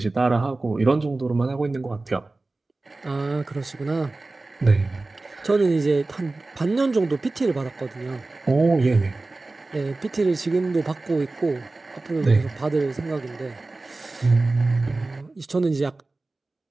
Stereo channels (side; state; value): left; quieter; 3.2 dB